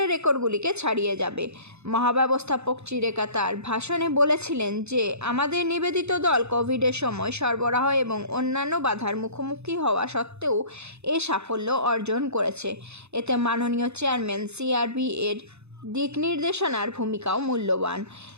রেকর্ডগুলিকে ছাড়িয়ে যাবে। মহাব্যবস্থাপক চিরেকা তার ভাষণে বলেছিলেন যে আমাদের নিবেদিত দল কোভিডের সময় সরবরাহ এবং অন্যান্য বাধার মুখোমুখি হওয়া সত্ত্বেও এ সাফল্য অর্জন করেছে। এতে মাননীয় চেয়ারম্যান সিআরবি এর দিক নির্দেশনার ভূমিকাও মূল্যবান।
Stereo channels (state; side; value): late; left; 0.81 ms